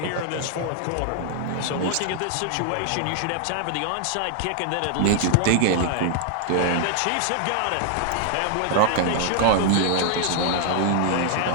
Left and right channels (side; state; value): both; different; correlation -0.01